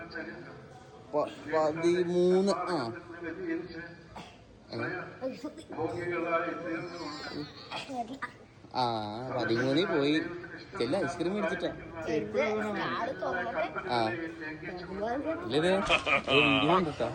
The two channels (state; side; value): identical; both; correlation 1.00